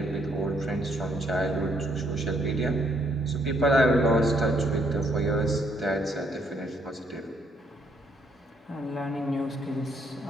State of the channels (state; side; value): normal; both; correlation 0.71